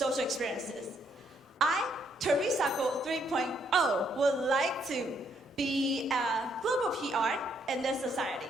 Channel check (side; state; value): both; normal; correlation 0.72